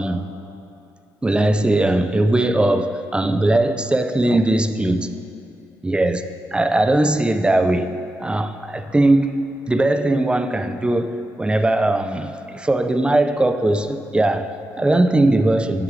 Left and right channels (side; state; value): both; normal; correlation 0.92